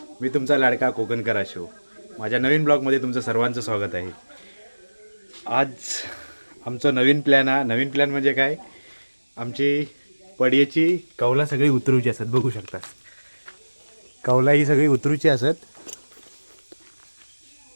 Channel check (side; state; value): both; inverted; correlation -1.00